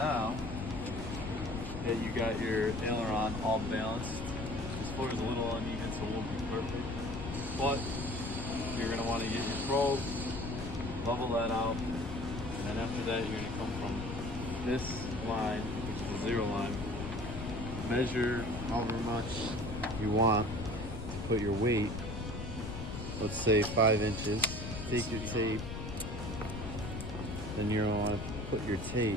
that you got your aileron all balanced, this floor is a little uneven, so it won't be perfect. But you're going to want to get your probe, level that out, and then after that you're going to come from this line, which is the 0 line, measure however much you want to put your weight, let's say 5 inches. Take your tape, then you're going to want to put your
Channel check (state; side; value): noise; left; rumble, 7 dB below the sound